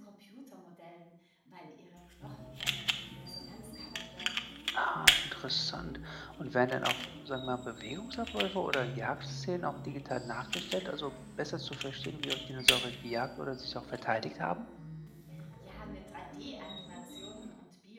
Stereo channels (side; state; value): both; identical; correlation 1.00